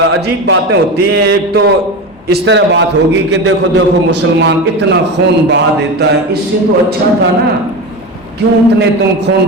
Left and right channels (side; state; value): both; normal; correlation 0.23